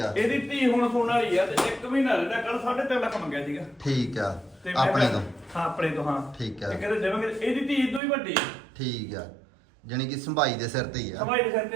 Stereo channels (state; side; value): drops out; left; at 8.0 s